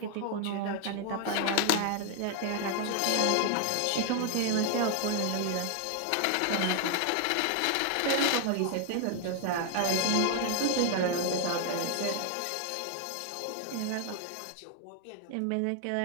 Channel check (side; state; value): both; different; correlation 0.00